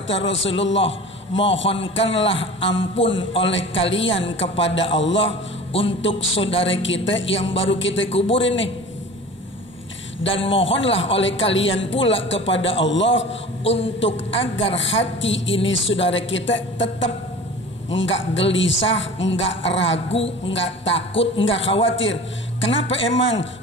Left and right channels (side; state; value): both; normal; correlation 0.39